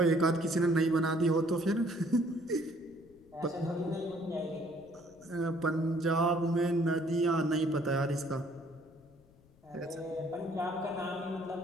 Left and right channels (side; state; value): left; noise; rumble, 28 dB below the sound